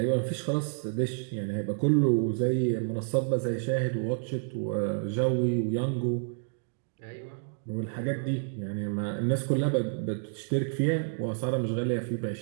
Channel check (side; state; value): left; silent; digital silence